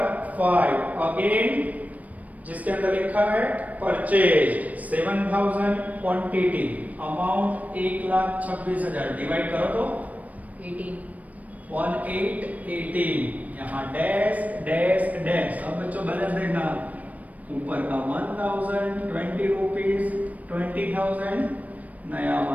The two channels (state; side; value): late; left; 0.072 ms